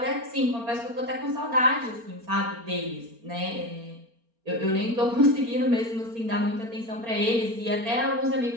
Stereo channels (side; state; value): left; late; 4.3 ms